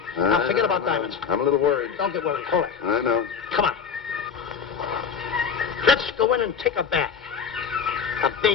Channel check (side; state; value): right; quieter; 6.6 dB